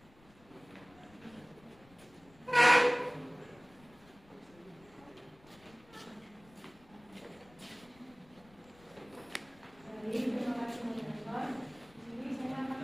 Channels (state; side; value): noise; left; rumble, 26 dB below the sound